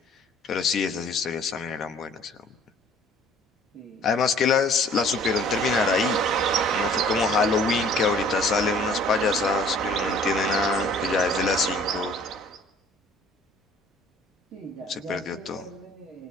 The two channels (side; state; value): both; normal; correlation 0.54